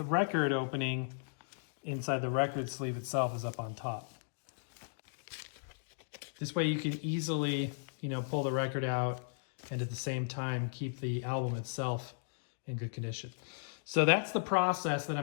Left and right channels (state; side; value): silent; right; digital silence